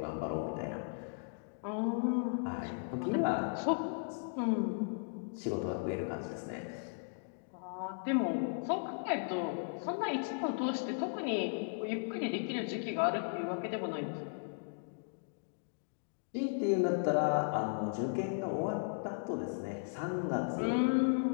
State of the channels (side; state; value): right; silent; digital silence